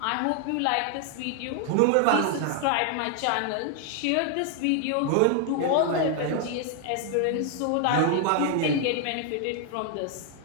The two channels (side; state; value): both; different; correlation 0.00